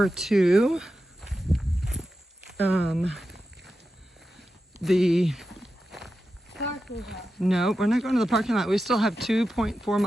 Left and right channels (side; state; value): both; normal; correlation 0.91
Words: to the Parking lot. No, we're not going to the parking lot. We still have 2.4